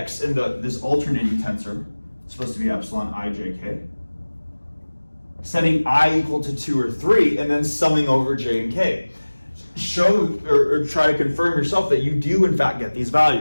in this alternating tensor, it's supposed to be epsilon I, j, k, setting I equal to 2 or 3, and then summing over j and k. Show or try to confirm yourself that you do in fact get these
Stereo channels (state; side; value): inverted; both; correlation -1.00